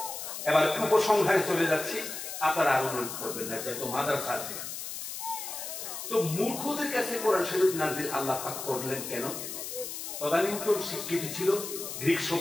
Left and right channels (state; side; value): noise; left; hiss, 7 dB below the sound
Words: এবার উপসংহারে চলে যাচ্ছি, আপনারা আরো মনে করবেন না, যেহেতু মাদ্রাসা আছে। তো মূর্খদের কাছে কোরআন শরীফ নাযিল আল্লাহ পাক করলেন কেন? তদানীন্তন স্বীকৃত ছিল গ্রিক